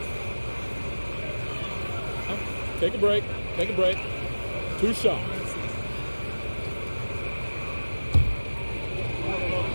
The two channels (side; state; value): both; inverted; correlation -1.00